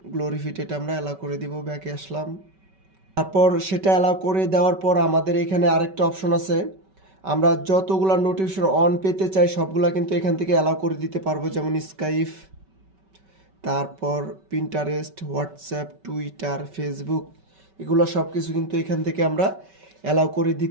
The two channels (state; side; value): late; left; 5.2 ms